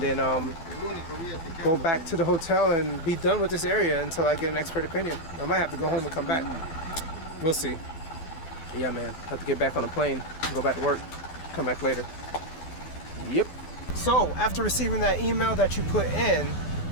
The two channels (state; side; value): late; right; 12 ms